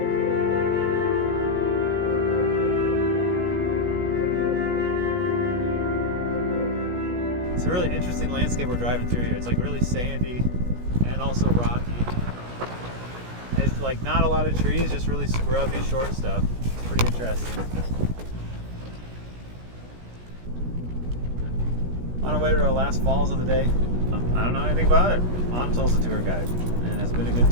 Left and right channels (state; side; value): late; left; 17 ms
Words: It's a really interesting landscape we're driving through here. It's like really sandy and also rocky. It's like not a lot of trees, just really scrubby short stuff. Pretty interesting. On our way to our last falls of the day. I don't know anything about it. Anatole's the tour guide, and it's been a good